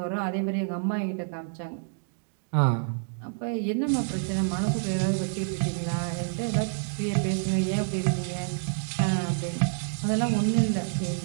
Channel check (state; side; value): silent; left; digital silence